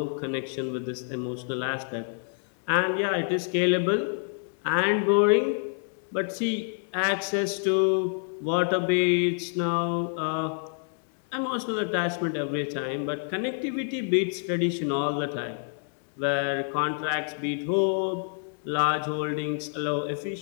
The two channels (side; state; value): right; silent; 60 dB below the other